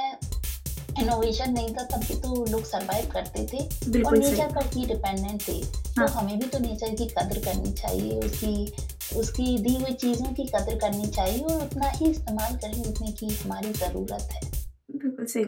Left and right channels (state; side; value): identical; both; correlation 1.00